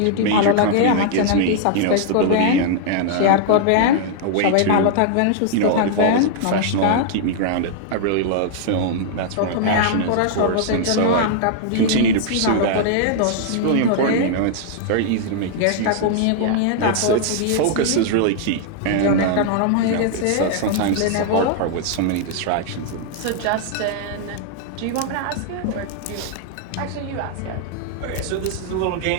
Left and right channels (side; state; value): both; different; correlation -0.01